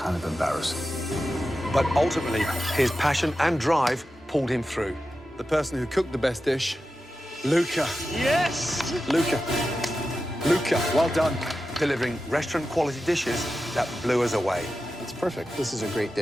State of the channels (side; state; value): both; normal; correlation 0.92